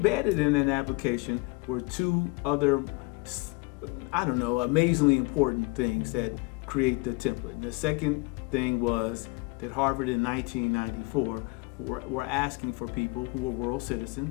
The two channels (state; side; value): quieter; right; 26.7 dB